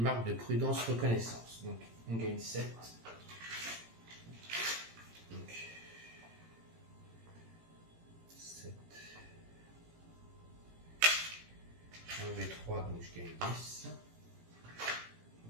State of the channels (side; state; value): left; late; 18 ms